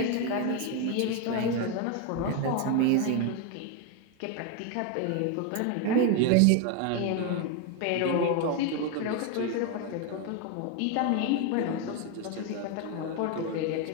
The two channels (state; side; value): different; both; correlation 0.01